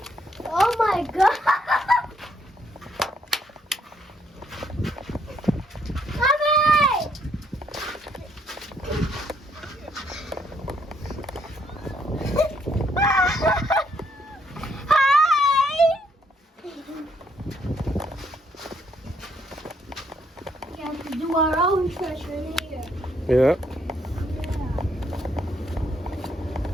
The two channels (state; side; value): normal; both; correlation 0.71